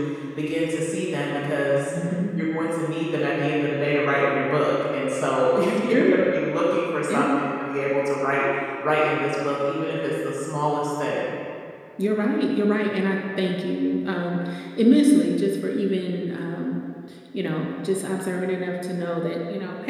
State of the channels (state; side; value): identical; both; correlation 1.00